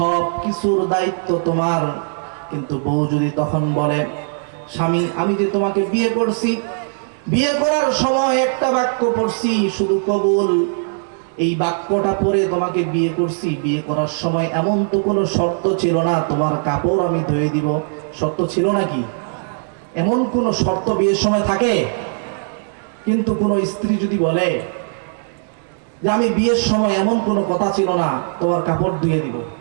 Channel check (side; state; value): left; silent; digital silence